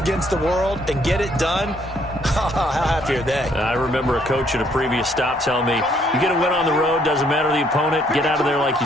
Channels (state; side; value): normal; both; correlation 0.67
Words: the world, and get it done, how happy are they? I remember a coach at a previous stop telling me, you get a win on the road, doesn't matter the opponent, get out of there like